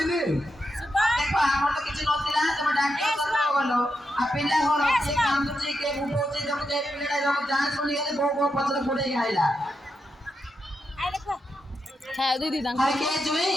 ने ଦେଖ ଆମର ତ କିଛି ନଥିଲା ତମେ ଡାକ୍ତର କଥା ଗଲ ଆଉ ପିଲା ଘର କିଏ କାନ୍ଦୁଛି କିଏ ବୁବଉଛି ତମେ ଯେ ପିଲାଟା ଯখন ଯାଞ୍ଚ କରି ଗଲେ ବୋଉ ବୋଉ ପଛରେ ଗୋଡେଇକି ଆଇଲା হ্যাঁ দিদি দাম আরে কে জুই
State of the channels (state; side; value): normal; both; correlation 0.85